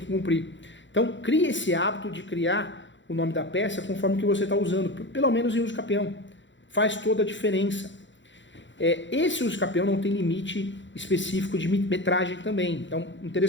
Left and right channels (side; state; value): right; late; 0.54 ms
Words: cumprir. Então, crie esse hábito de criar o nome da peça conforme o que você está usando, pelo menos em uso capião. Faz toda a diferença. Esse uso capião não tem limite específico de metragem também. Então,